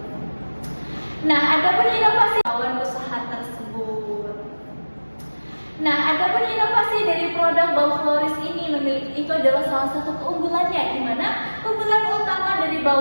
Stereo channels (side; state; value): both; inverted; correlation -1.00